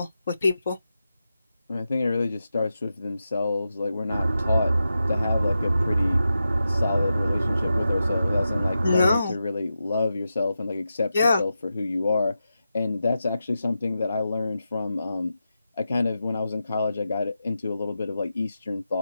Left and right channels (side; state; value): both; inverted; correlation -0.89